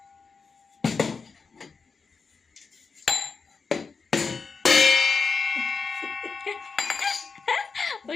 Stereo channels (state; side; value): quieter; right; 4.9 dB